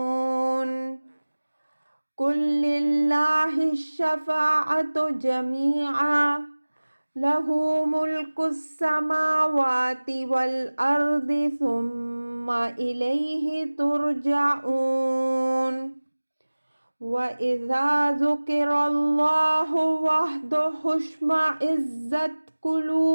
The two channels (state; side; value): inverted; both; correlation -1.00